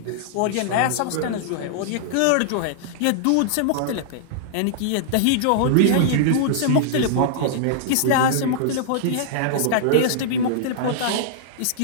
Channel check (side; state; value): both; different; correlation -0.01